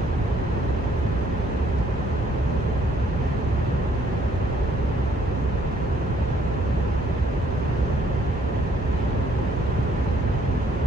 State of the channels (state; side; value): normal; both; correlation 0.65